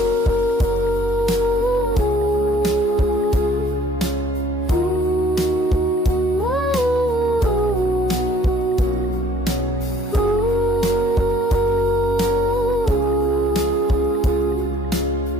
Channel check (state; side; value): normal; both; correlation 0.56